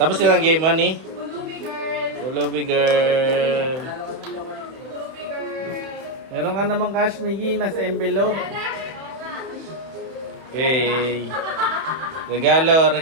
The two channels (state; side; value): late; left; 31 ms